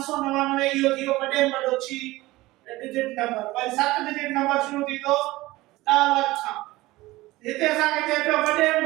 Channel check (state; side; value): quieter; left; 19.0 dB